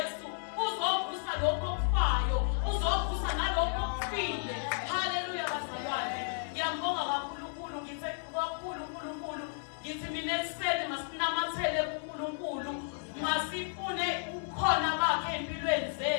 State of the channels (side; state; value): right; silent; digital silence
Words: uzovusa lokho okufayo, uzovusa nalokho okufile. Haleluya bazalwane. Ngiyambonga kakhulu, ngithe kakhulu uNkulunkulu, ngithi mina ekuseni masinamathele kuNkulunkulu, masifune ukhona bakhe empilweni